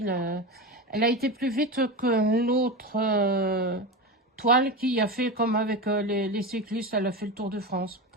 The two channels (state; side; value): normal; both; correlation 0.22